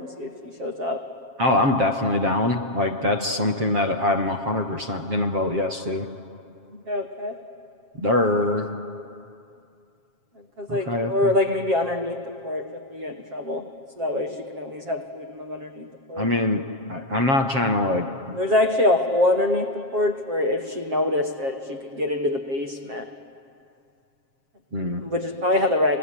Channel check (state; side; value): late; left; 7.4 ms